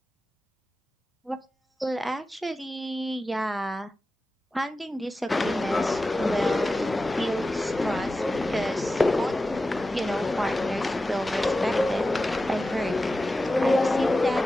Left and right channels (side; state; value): both; normal; correlation 0.94